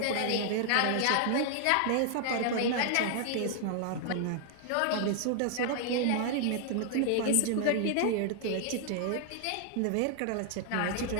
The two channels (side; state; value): both; different; correlation 0.00